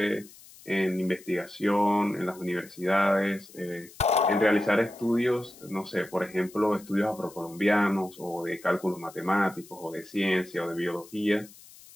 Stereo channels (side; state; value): left; noise; hiss, 21 dB below the sound